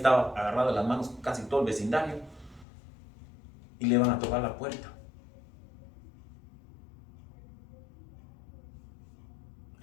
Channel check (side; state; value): right; drops out; at 2.7 s